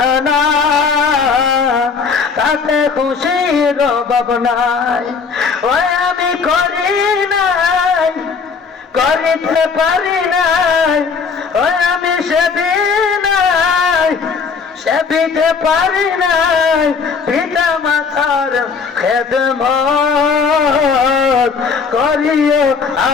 তাতে খুশির অভাব নাই। ওই আমি করি নাই, করিতে পারি নাই, ওই আমি সেবি নাই, সেবিতে পারি নাই পিতা মাতার খেদমত, করিও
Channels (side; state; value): right; quieter; 5.4 dB